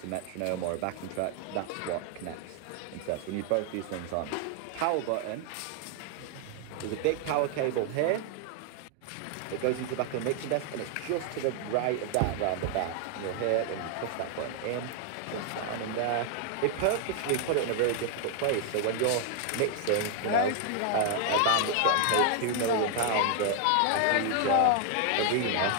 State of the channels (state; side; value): different; both; correlation 0.00